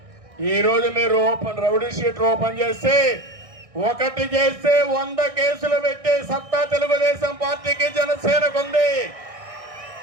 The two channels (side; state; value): left; late; 1.6 ms